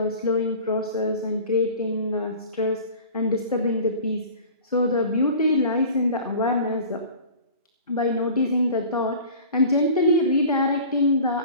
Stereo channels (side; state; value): both; inverted; correlation -0.41